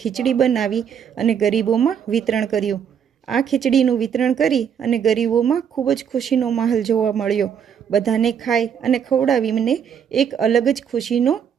બનાવી અને ગરીબોમાં વિતરણ કર્યું। આ ખીચડીનું વિતરણ કરી અને ગરીબોમાં ખૂબ જ ખુશીનો માહોલ જોવા મળ્યો। બધાને ખાઈ અને ખવડાવીને એક અલગ જ ખુશીનો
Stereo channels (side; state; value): left; quieter; 7.9 dB